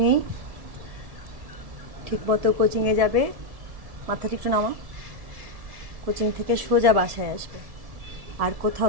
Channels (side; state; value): left; late; 1.7 ms